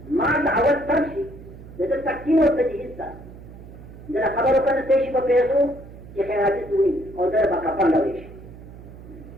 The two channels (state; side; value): noise; right; hum, 17 dB below the sound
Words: ما अवल तफसी द तफसील व तजदीद था जरा खबर को तेज को पेशो कि खैराती हुई और दर कफन लवेश